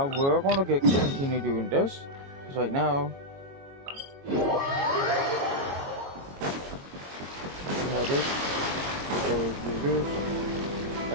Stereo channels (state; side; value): late; left; 22 ms